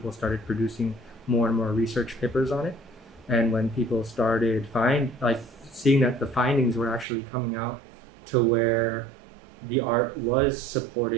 started producing more and more research papers on it. And when people started seeing that the findings were actually coming out to where the art was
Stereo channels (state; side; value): drops out; left; at 7.1 s